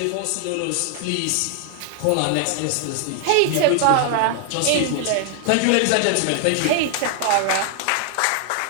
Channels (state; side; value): different; both; correlation 0.00